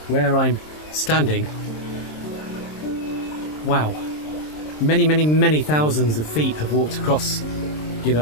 where I'm standing, wow, many, many, many thousands of feet have walked across, you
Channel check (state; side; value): late; right; 26 ms